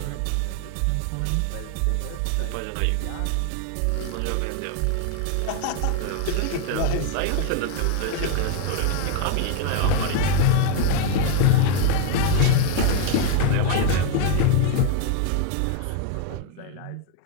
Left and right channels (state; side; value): different; both; correlation 0.01